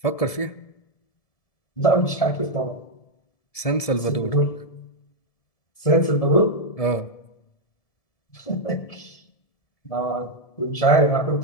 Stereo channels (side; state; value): right; late; 1.7 ms